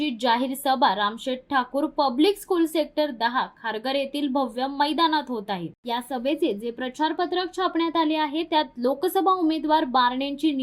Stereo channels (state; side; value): identical; both; correlation 1.00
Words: जाहीर सभा Ramsheth Thakur public school sector 10 Kharghar येथील भव्य मैदानात होत आहे। या सभेचे जे प्रचार पत्रक छापण्यात आले आहे त्यात लोकसभा उमेदवार बारणेंची